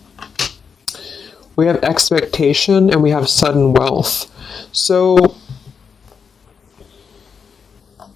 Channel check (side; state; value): right; quieter; 6.2 dB